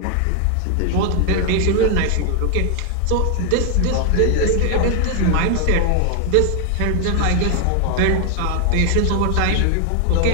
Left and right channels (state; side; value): different; both; correlation 0.00